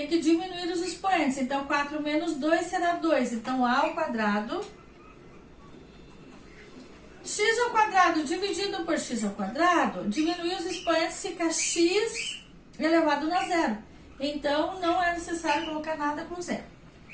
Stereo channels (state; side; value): identical; both; correlation 1.00